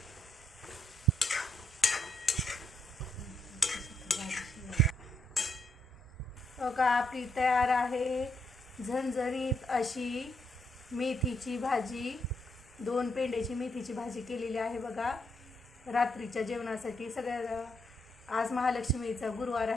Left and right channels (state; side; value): normal; both; correlation 0.76